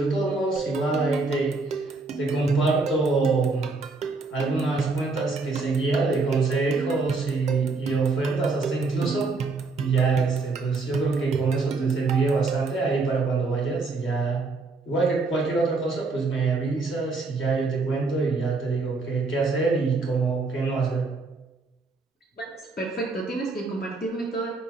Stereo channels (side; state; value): left; quieter; 3.8 dB